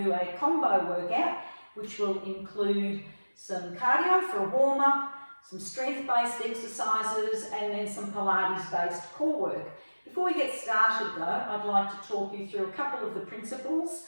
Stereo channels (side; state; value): both; inverted; correlation -1.00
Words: do a combo workout which will include some cardio for a warm-up, some strength-based exercises and then some Pilates-based core work. Before we get started though, I'd like to talk you through a couple of the principles.